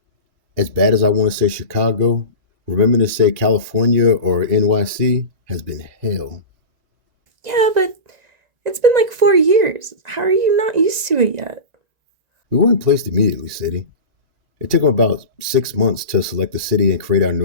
As bad as I want to say Chicago, remembering to say California or NYC has been hell. Yeah, but it's been like 4 years. How are you not used to it yet? We weren't placed immediately, Sadie. It took them about 6 months to select the city and create our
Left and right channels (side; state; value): left; late; 1.9 ms